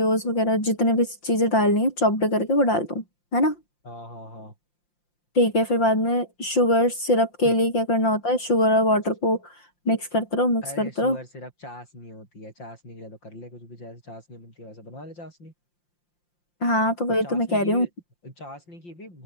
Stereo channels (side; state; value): right; late; 5.7 ms